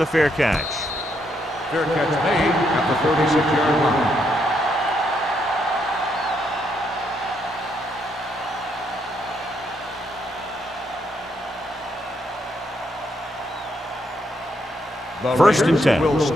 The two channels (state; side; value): normal; both; correlation 0.76